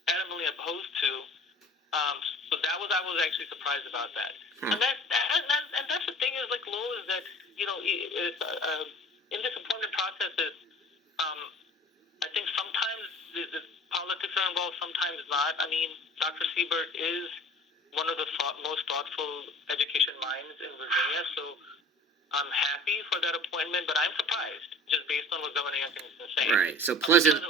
adamantly opposed to. So I was actually surprised about that. And that's the thing is like Lowell is that in this appointment processes, I think sometimes the politics are involved, sometimes not. I mean, Dr. Siebert is one of the most thoughtful education minds in Virginia, so I'm happy for that appointment, but I'm surprised, just based on what Governor Youngkin has been saying. Right, so pleasantly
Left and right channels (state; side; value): normal; both; correlation 0.43